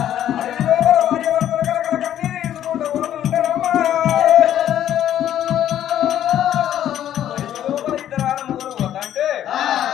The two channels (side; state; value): right; quieter; 11.2 dB